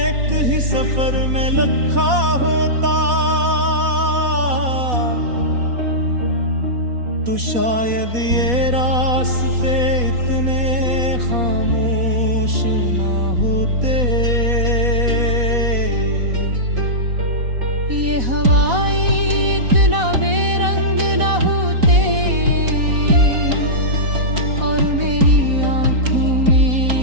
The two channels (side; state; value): left; late; 4.1 ms